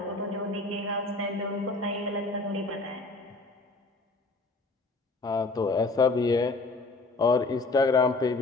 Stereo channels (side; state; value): right; quieter; 3.4 dB